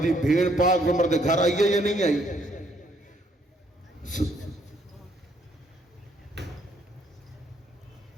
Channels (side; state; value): both; normal; correlation 0.68